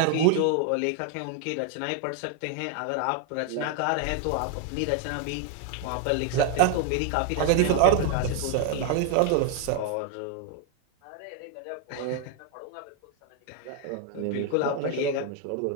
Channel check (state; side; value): different; both; correlation 0.00